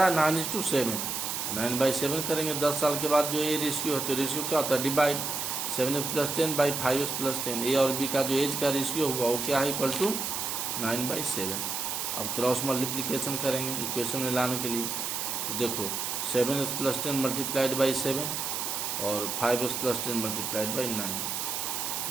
है? 9:7। 9/7 करेंगे 10 साल के बाद जो ये रेशियो है, तो रेशियो क्या होता है? Divide 7x + 10 / 5x + 10। ए और बी का जो एज का रेशियो हुआ वो क्या है? Equal to 9/7। अब क्रॉस मल्टीप्लिकेशन करेंगे इक्वेशन में लाने के लिए। तो देखो 7x + 10 × 7 और 5x + 10 × 9।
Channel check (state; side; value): noise; right; hiss, 2 dB below the sound